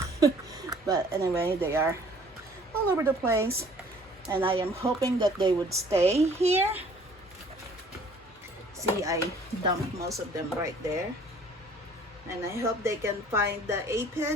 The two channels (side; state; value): both; normal; correlation 0.54